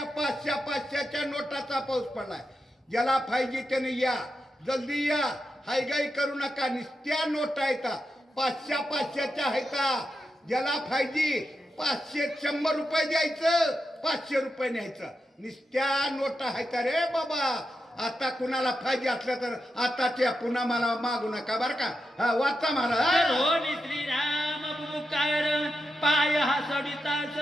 500-500च्या नोटाचा पाऊस पडलाय. ज्याला पाहिजे त्याने या, जल्दी या, हायगाई करू नका. नुसत्या नोटा आहेत, 500-500च्या आहेत. ज्याला पाहिजे 500-100 रुपये द्यायचं, 500 रुपये न्यायचं. नुसत्या नोटा आहेत रे बाबा. आता कुणाला पाहिजे असलं तर आताच्या पुन्हा मला मागू नका बरं का. हा, वाचा मला. होनी श्रीराम बुकार पाय हा सडिता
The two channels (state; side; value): normal; both; correlation 0.88